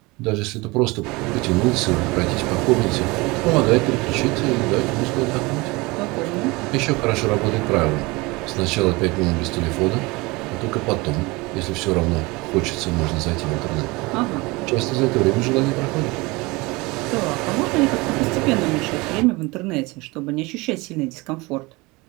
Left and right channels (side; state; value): left; quieter; 24.0 dB